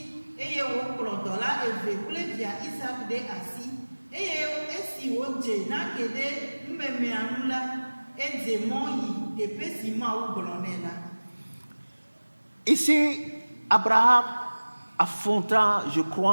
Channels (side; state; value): both; inverted; correlation -1.00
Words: eye wòkplɔ dɔla eve kple via Isaac ɖe asi eye esi wòdze nake ɖe numemea nu la edze mɔ yi teƒe si Mawu gblɔ nɛ la. Ici, Abraham affronta, je